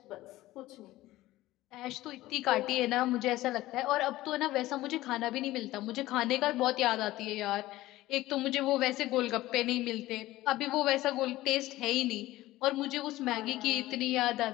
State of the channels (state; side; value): quieter; right; 16.8 dB